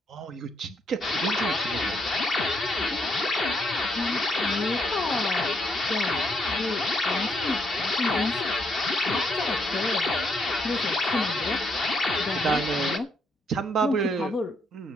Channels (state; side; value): normal; both; correlation 0.73